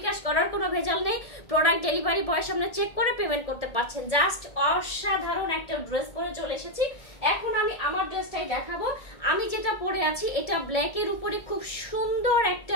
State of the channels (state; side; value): late; right; 1.7 ms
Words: করার কোনো ভেজাল নেই। প্রোডাক্ট ডেলিভারি বয়ের সামনে চেক করে পেমেন্ট করতে পারছেন। জাস্ট অসাধারণ একটা ড্রেস পরে চলে এসেছি। এখন আমি আমার ড্রেসটাই দেখাবো। আমি যেটা পরে আছি এটা ব্ল্যাকের উপরে খুব সুন্দর